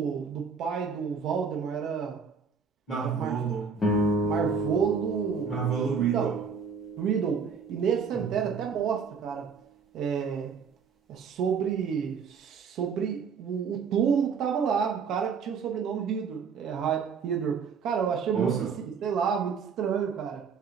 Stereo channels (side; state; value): left; quieter; 5.9 dB